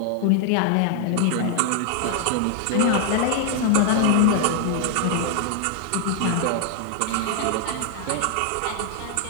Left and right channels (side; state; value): both; different; correlation 0.00